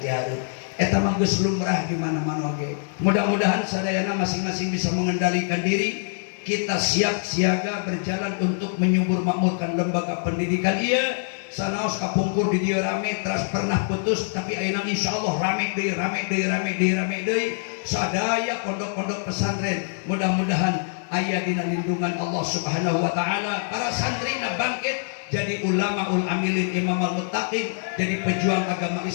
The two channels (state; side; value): silent; right; 59 dB below the other